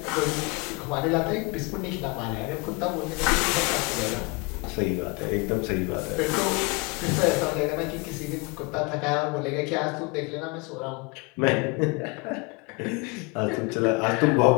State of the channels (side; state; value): right; quieter; 29.3 dB